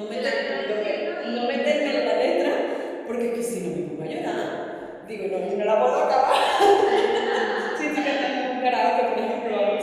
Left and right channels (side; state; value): both; identical; correlation 1.00